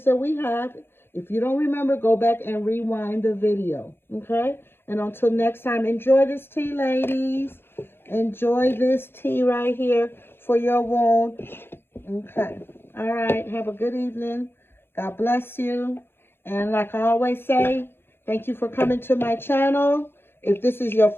that we have. If you don't remember, go back and rewind the video. Okay. And until next time, enjoy this tea, ladies. Enjoy this tea right here for your wound. Okay. All right. Have a good evening. God bless you. And like I always say, thank you for coming to my channel. If this is your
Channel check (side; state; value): right; late; 0.11 ms